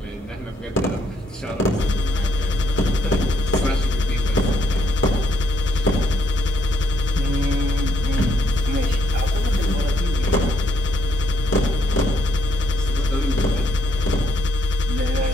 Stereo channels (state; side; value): normal; both; correlation 0.72